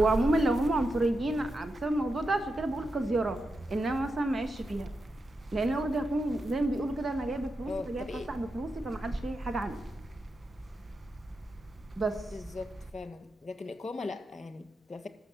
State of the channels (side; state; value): both; normal; correlation 0.87